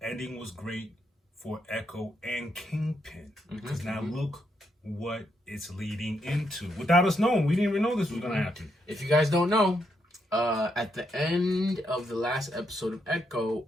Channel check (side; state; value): both; normal; correlation 0.79